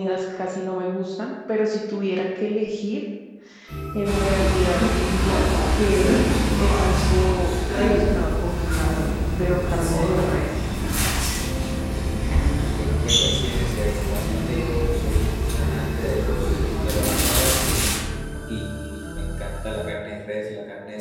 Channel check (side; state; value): both; identical; correlation 1.00